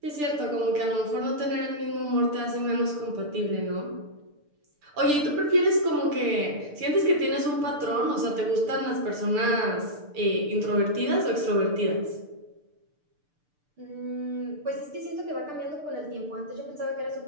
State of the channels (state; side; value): late; left; 6.7 ms